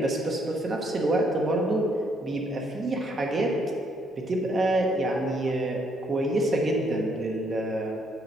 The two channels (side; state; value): both; normal; correlation 0.70